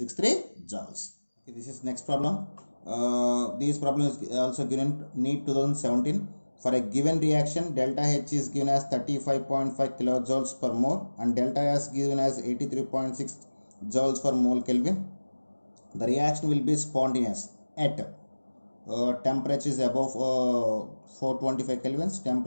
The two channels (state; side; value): inverted; both; correlation -1.00